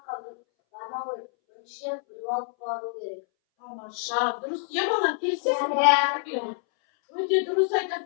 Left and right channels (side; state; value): right; silent; 60 dB below the other